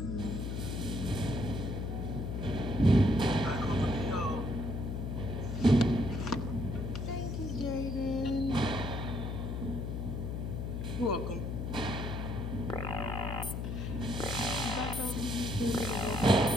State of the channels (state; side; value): noise; left; hum, 3 dB below the sound